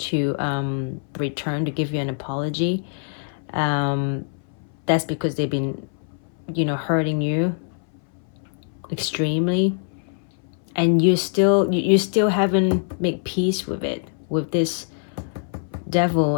return, to give you an apology. That's because they've been, you know, hurting you extremely, and you still haven't made peace with it, with this devil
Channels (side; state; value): right; silent; 60 dB below the other